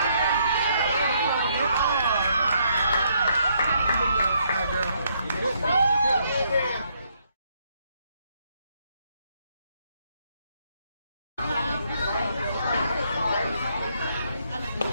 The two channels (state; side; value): inverted; both; correlation -0.72